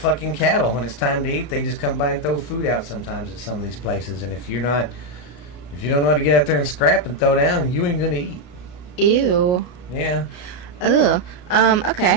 cattle. When it's time to eat, they just come by and throw food out sometimes at some of these places. And if you don't know how to get out there and scrap and throw down, you ain't gonna eat. Ew. Yeah. Ugh.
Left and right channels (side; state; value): right; late; 33 ms